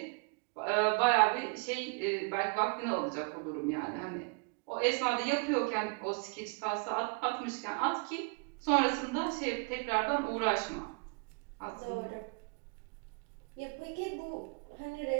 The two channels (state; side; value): quieter; left; 34.9 dB